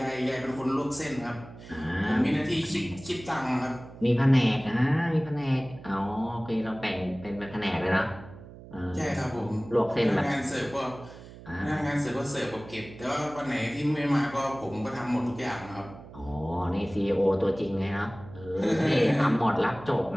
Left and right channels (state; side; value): noise; right; hum, 17 dB below the sound